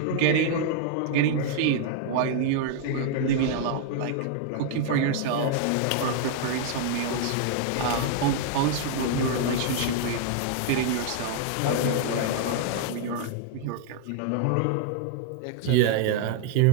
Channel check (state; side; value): different; both; correlation 0.00